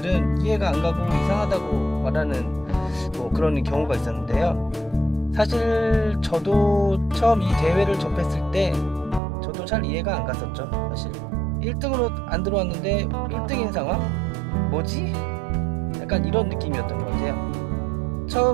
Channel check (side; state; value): left; drops out; at 9.2 s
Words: 이해가 안 가고 이상하다고 말하는 그런 경우가 있었는데요. 사실 저도 처음 이 대회를 접했을 때 저도 잘 이해가 안 갔었죠. 사실 1등으로 안 들어왔는데 1등인 상황? 뭐지? 약간 이런 느낌이었던 것 같아요.